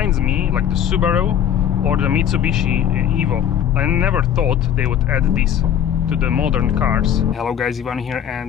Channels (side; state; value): right; quieter; 9.7 dB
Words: me like the Subaru or the Mitsubishi Evo. I never thought they would add this to the modern cars. Hello guys, Ivan here